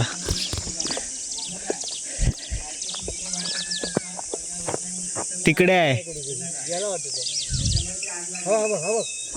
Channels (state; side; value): identical; both; correlation 1.00